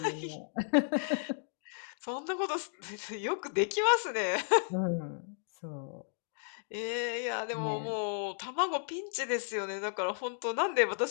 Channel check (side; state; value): right; silent; digital silence